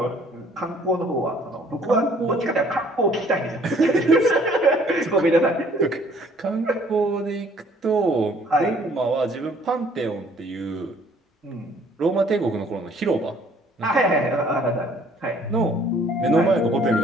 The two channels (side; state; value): both; normal; correlation 0.59